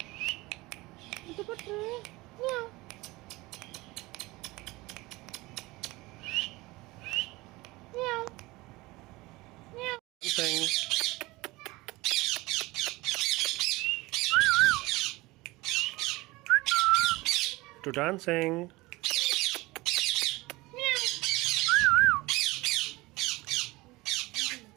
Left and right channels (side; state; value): left; quieter; 21.3 dB